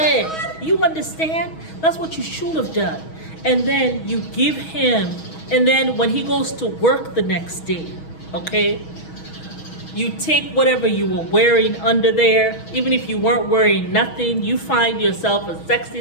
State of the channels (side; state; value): right; late; 6.3 ms